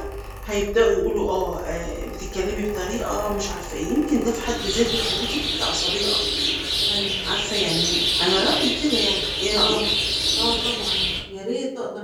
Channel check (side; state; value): both; identical; correlation 1.00